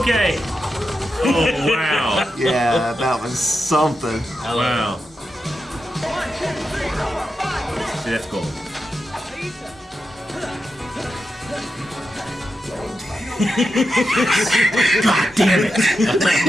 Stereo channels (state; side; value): normal; both; correlation 0.88